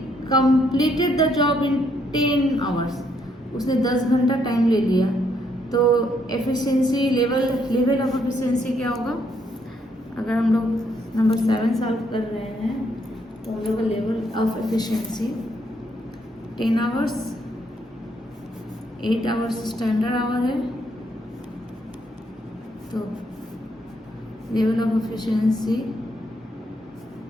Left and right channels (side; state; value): both; normal; correlation 0.73